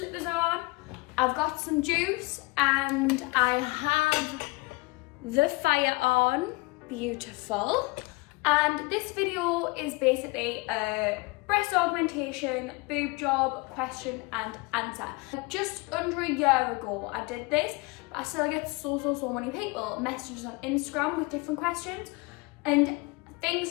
on, I've got some juice, and I have the fire on. Beautiful. And this video is basically a breast augmentation boob job question and answer. Just under a year ago I did this, but I still get so many people messages on Instagram with different questions. And things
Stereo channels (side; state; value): right; quieter; 25.3 dB